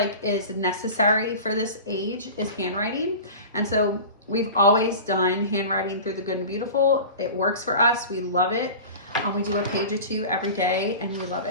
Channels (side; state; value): both; inverted; correlation -0.35